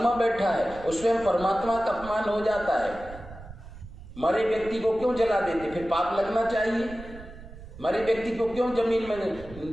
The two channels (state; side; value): noise; right; rumble, 16 dB below the sound